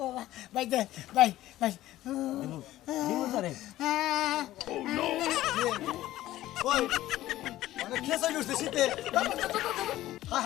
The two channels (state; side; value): quieter; right; 15.0 dB